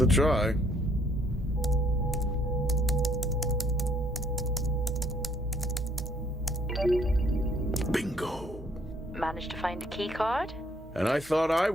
try. Bingo. Managed to find a key card? And I thought I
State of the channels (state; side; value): normal; both; correlation 0.64